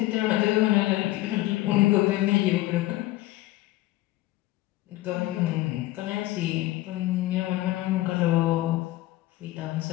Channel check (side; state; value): right; quieter; 17.0 dB